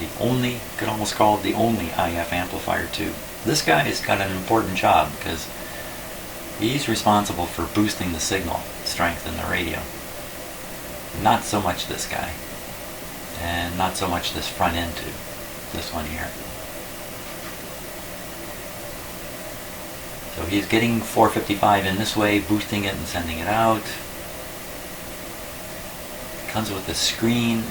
only, you could almost call it the only IF amplifier too. This guy has got an important job because he's responsible for boosting the signal strength in the radio. Not so much this guy. And not so much this front end tube, this one here. So he's getting 455 in this way, boosting it and sending it out. It comes with a screen.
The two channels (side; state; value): both; identical; correlation 1.00